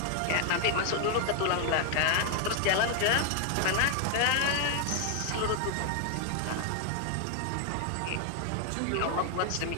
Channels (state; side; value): different; both; correlation 0.00